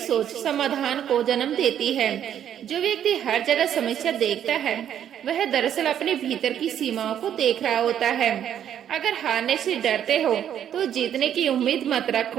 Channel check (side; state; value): left; quieter; 9.9 dB